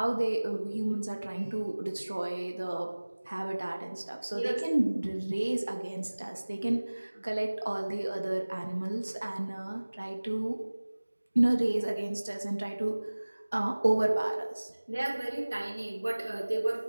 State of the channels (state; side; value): inverted; both; correlation -1.00